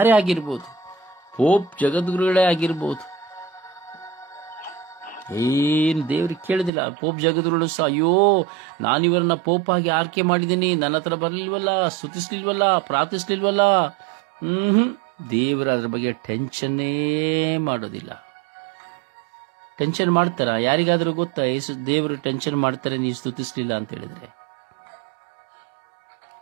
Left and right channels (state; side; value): drops out; left; at 6.7 s